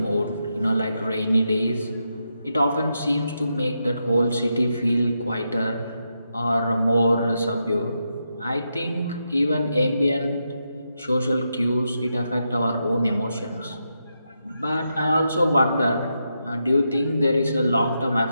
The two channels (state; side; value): inverted; both; correlation -0.84